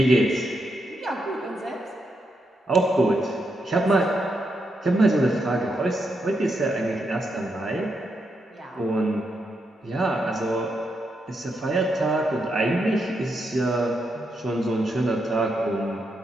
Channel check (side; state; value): both; normal; correlation 0.82